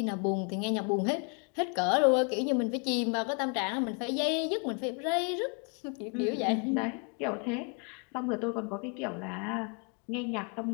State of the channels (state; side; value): quieter; right; 37.5 dB